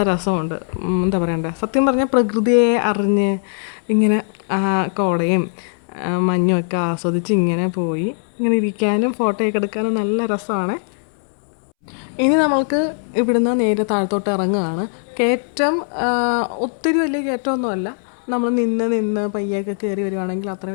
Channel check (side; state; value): right; silent; 66 dB below the other